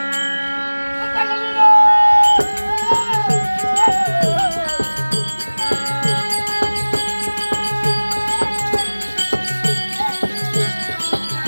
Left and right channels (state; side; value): inverted; both; correlation -1.00